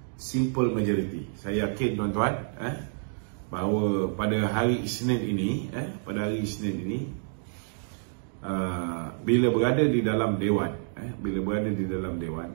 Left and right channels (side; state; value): left; silent; digital silence